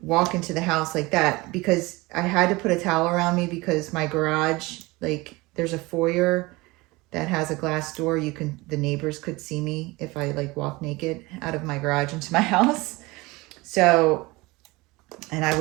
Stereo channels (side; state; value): left; quieter; 22.4 dB